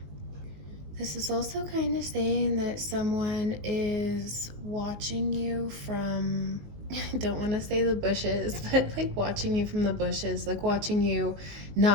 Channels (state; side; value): late; left; 20 ms